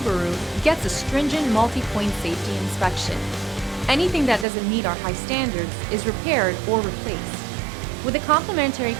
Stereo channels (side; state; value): left; drops out; at 4.5 s